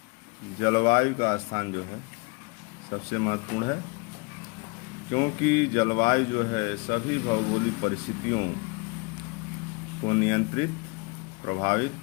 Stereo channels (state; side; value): quieter; right; 29.4 dB